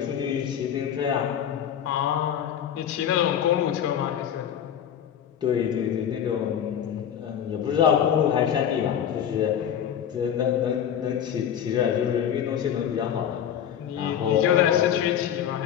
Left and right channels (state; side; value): quieter; right; 9.3 dB